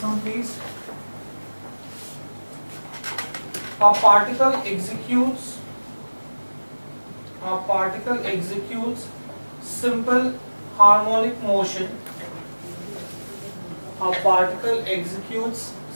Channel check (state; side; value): inverted; both; correlation -1.00